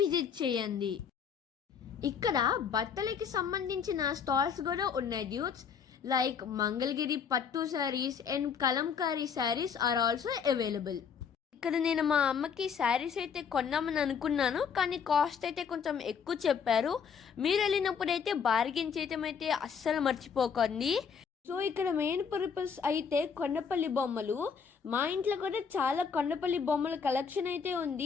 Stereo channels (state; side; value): quieter; right; 6.6 dB